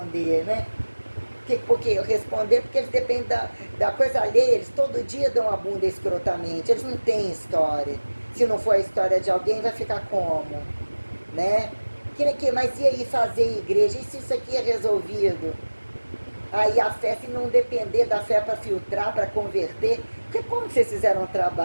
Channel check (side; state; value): both; inverted; correlation -1.00